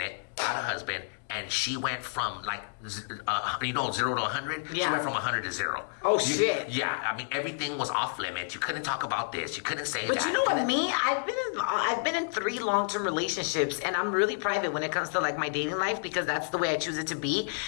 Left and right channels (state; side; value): silent; right; digital silence